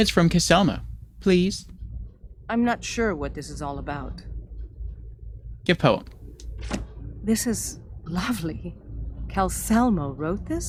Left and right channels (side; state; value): both; identical; correlation 1.00